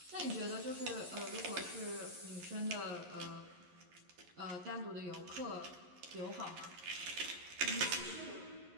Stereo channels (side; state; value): left; late; 11 ms